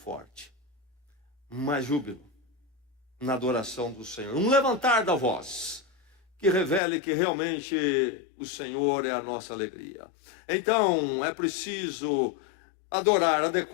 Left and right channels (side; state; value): right; drops out; at 6.8 s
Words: Mais júbilo na adoração do Senhor. Um levantar da voz que revele que realmente o Senhor é a nossa alegria. Então, é preciso adorar